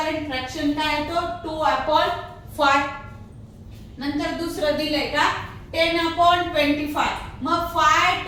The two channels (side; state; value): both; identical; correlation 1.00